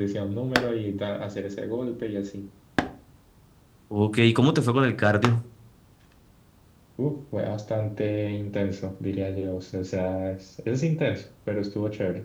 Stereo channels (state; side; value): identical; both; correlation 1.00